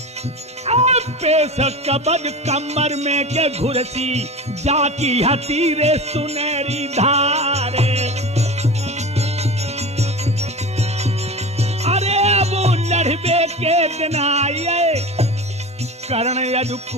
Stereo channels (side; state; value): both; normal; correlation 0.30